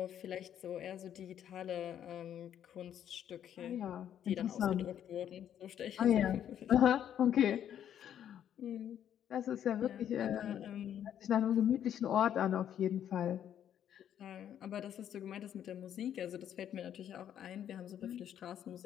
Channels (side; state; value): right; quieter; 9.9 dB